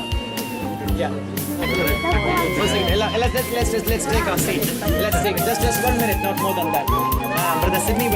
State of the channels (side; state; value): both; identical; correlation 1.00